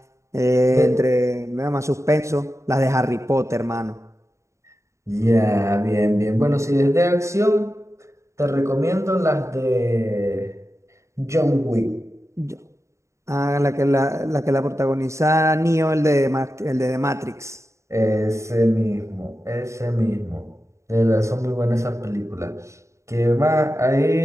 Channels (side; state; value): left; late; 0.14 ms